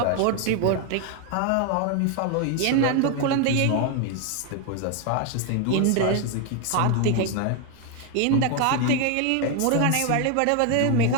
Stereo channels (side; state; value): both; different; correlation 0.01